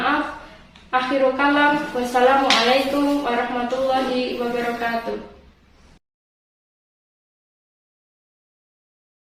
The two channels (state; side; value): identical; both; correlation 1.00